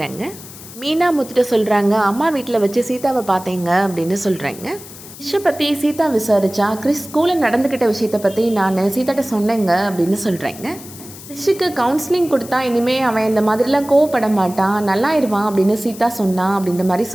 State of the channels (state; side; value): noise; left; hiss, 16 dB below the sound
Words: மீனா முத்துட்ட சொல்கிறாங்க, அம்மா வீட்டில் வச்சு சீதாவை பார்த்தேங்க அப்படின்னு சொல்கிறாங்க. கிறிஷை பற்றி சீதா விசாரிச்சா கிறிஸ் ஸ்கூலில் நடந்துக்கிட்ட விஷயத்தை பற்றி நான் சீதாட்ட சொன்னேங்க அப்படின்னு சொல்கிறாங்க. கிறிஷுக்கு கவுன்சிலிங் கொடுத்தா இனிமேல் அவன் இந்த மாதிரிலாம் கோவப்பட மாட்டான், நல்லாயிருவான் அப்படின்னு சீதா சொன்னான் அப்படின்ற மாதிரி